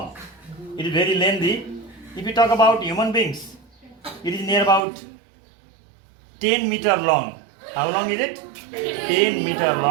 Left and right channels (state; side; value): drops out; left; at 4.9 s